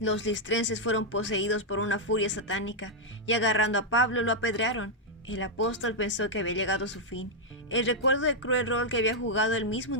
listrenses fueron poseídos por una furia satánica y agarrando a Pablo lo apedrearon. El apóstol pensó que había llegado a su fin. El recuerdo del cruel rol que había jugado él mismo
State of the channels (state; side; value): normal; both; correlation -0.02